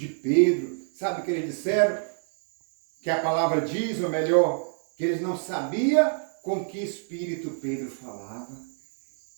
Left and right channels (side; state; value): left; silent; digital silence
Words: Pedro. Sabe o que eles disseram? Que a palavra diz, ou melhor, que eles não sabiam com que espírito Pedro falava.